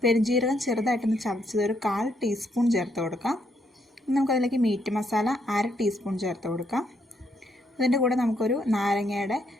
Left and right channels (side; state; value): both; normal; correlation 0.74